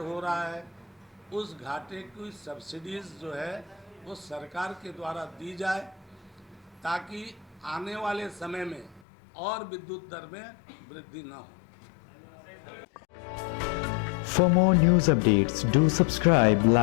हो रहा है, उस घाटे की सब्सिडीज़ जो है वो सरकार के द्वारा दी जाए, ताकि आने वाले समय में और विद्युत दर में वृद्धि न हो। For more news updates, do subscribe,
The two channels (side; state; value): right; drops out; at 9.0 s